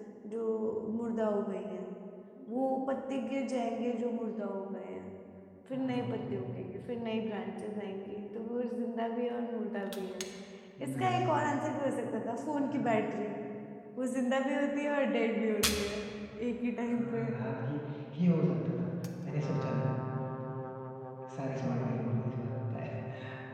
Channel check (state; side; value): identical; both; correlation 1.00